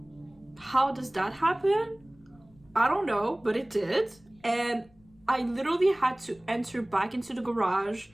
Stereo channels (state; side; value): noise; left; rumble, 30 dB below the sound